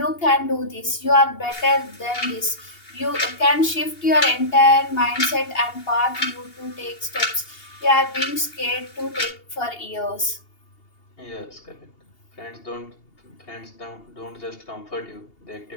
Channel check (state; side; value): late; right; 2.8 ms